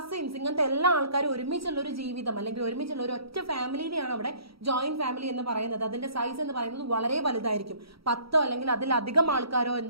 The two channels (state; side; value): late; left; 0.75 ms